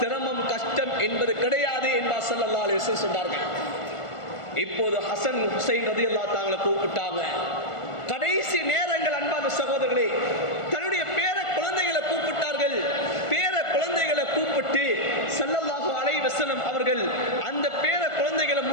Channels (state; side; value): late; right; 1.4 ms